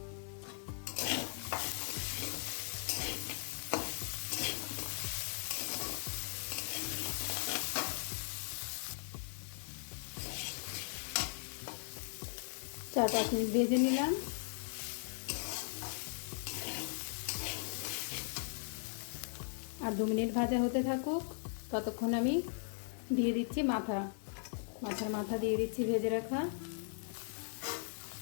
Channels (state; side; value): silent; right; 52 dB below the other